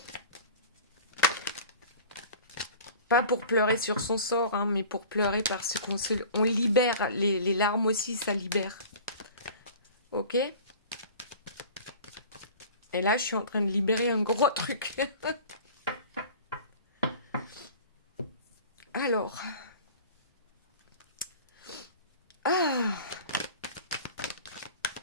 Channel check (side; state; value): both; inverted; correlation -0.41